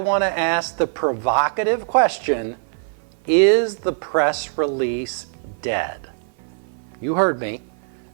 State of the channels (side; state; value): left; silent; 56 dB below the other